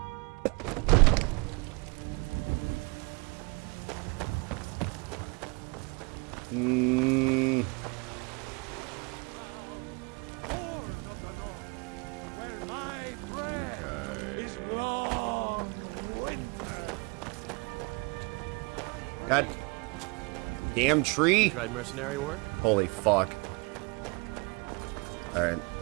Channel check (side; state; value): left; quieter; 29.9 dB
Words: God damn tree. You tried mercenary work? Holy fuck. Alright.